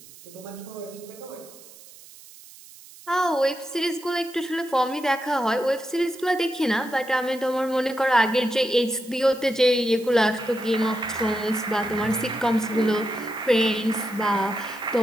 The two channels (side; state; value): right; noise; hiss, 20 dB below the sound